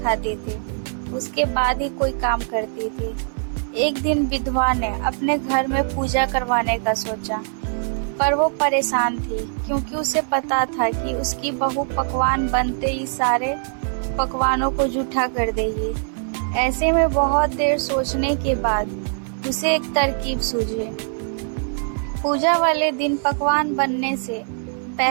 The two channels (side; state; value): left; silent; 62 dB below the other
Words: थी, उसके बाद ही कोई काम करती थी। एक दिन विधवा ने अपने घर में पूजा करवाने का सोचा, पर वो परेशान थी क्योंकि उसे पता था कि उसकी बहू पकवान बनते ही सारे पकवानों को जूठा कर देगी। ऐसे में बहुत देर सोचने के बाद उसे एक तरकीब सूझी। पूजा वाले दिन पकवान बनने से